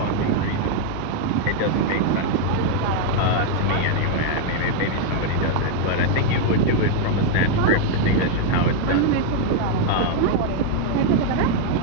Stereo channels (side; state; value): both; different; correlation 0.00